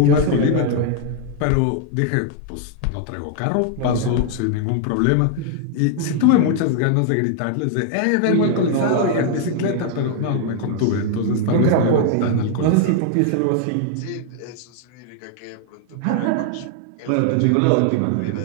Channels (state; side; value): different; both; correlation 0.00